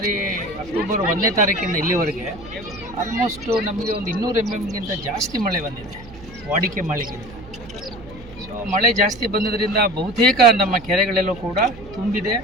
ಅಕ್ಟೋಬರ್ 1ನೇ ತಾರೀಕಿಂದ ಇಲ್ಲಿವರೆಗೆ ಆಲ್ಮೋಸ್ಟು ನಮಗೆ ಒಂದು 200 mm ಜಾಸ್ತಿ ಮಳೆ ಬಂದಿದೆ, ವಾಡಿಕೆ ಮಳೆಗಿಂತ. ಸೊ ಮಳೆ ಜಾಸ್ತಿ ಬಂದಿದ್ದರಿಂದ ಬಹುತೇಕ ನಮ್ಮ ಕೆರೆಗಳೆಲ್ಲೂ ಕೂಡ ತುಂಬಿದೆ.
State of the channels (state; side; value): noise; right; hum, 19 dB below the sound